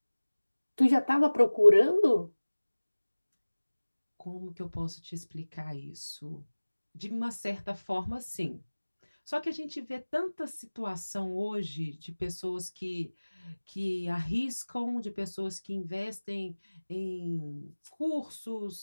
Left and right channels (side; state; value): both; inverted; correlation -1.00